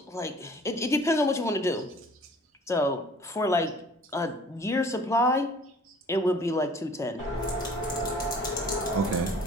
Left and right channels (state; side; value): normal; both; correlation 0.50